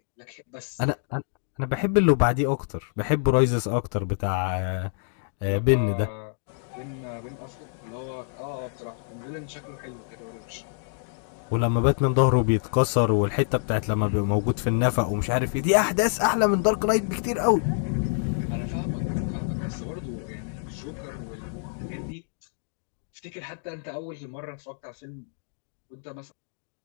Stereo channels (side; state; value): right; silent; digital silence